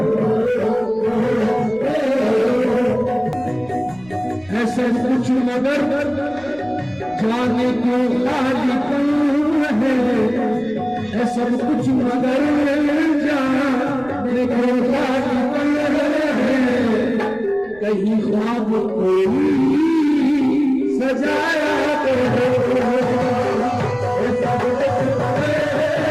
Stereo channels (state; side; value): noise; right; rumble, 24 dB below the sound